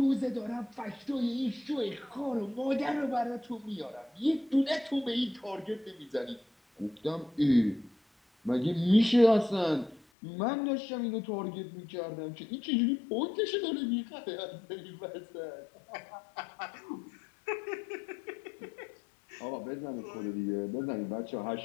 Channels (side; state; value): right; drops out; at 10.0 s